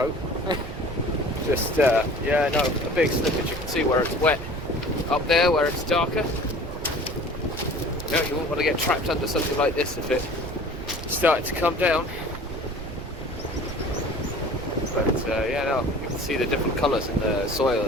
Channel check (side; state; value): right; noise; rumble, 9 dB below the sound